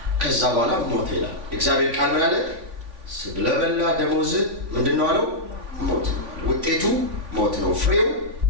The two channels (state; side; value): late; left; 3.5 ms